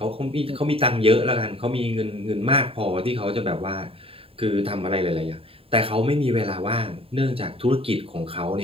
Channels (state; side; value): late; left; 0.27 ms